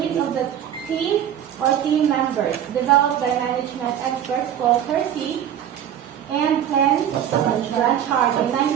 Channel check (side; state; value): left; quieter; 10.0 dB